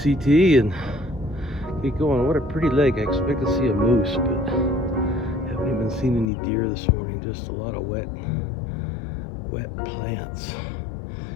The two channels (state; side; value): drops out; right; at 6.2 s